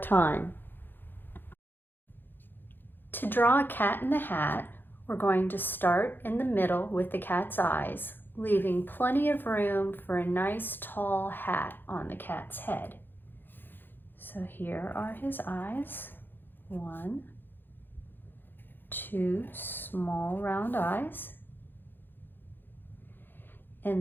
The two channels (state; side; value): late; right; 0.096 ms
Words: To draw a cat in the hat, we're going to start in the middle with the cat's eyes, leaving plenty of room for a nice tall hat on the cat's head. So here are his eyes. 1, 2 small round eyes. In